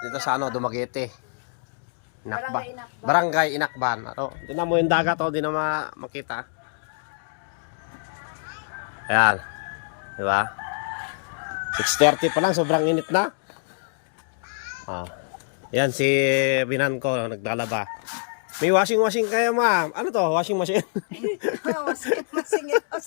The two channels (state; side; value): silent; right; digital silence